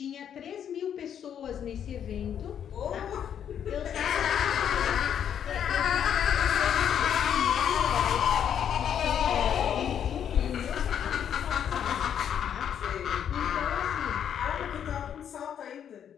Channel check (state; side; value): quieter; right; 8.9 dB